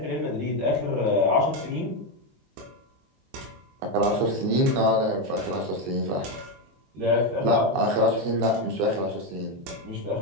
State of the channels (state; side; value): late; left; 22 ms